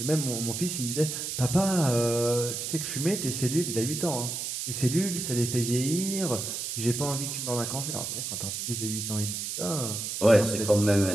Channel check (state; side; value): noise; right; hiss, 4 dB below the sound